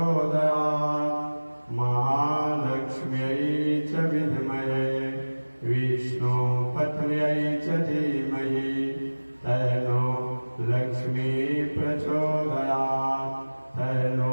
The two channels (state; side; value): inverted; both; correlation -1.00